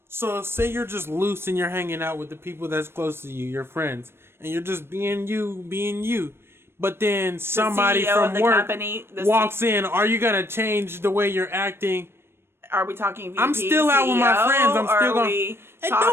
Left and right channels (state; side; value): late; left; 0.12 ms